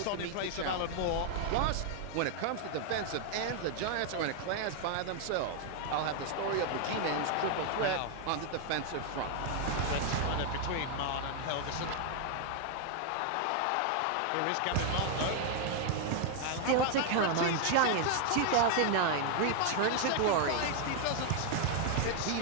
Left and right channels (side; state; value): both; different; correlation 0.00